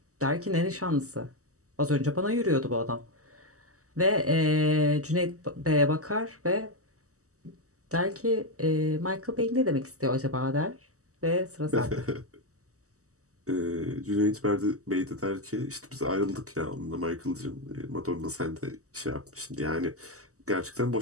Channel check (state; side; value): late; left; 0.66 ms